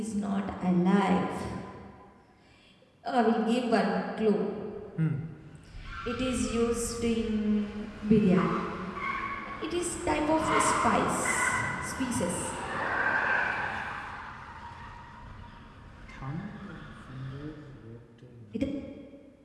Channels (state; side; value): identical; both; correlation 1.00